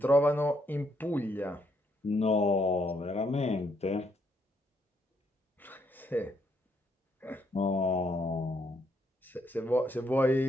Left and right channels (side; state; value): both; normal; correlation 0.74